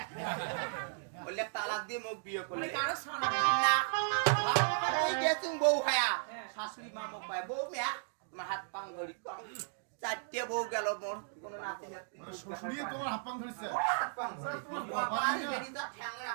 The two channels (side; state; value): left; silent; digital silence